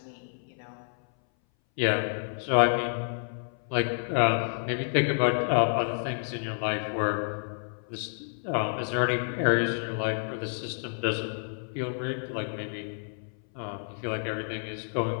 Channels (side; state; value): right; silent; 58 dB below the other